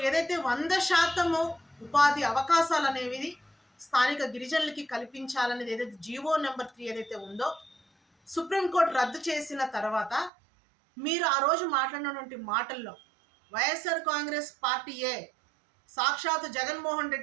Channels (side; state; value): left; drops out; at 10.3 s